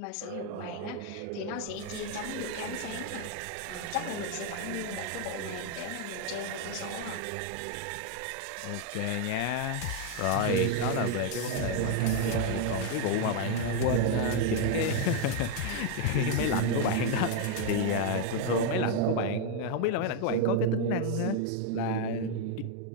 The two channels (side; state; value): both; different; correlation 0.00